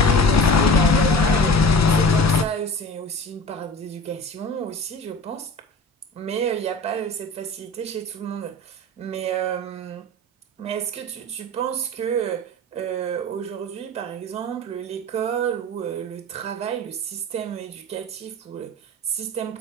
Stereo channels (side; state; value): both; normal; correlation 0.37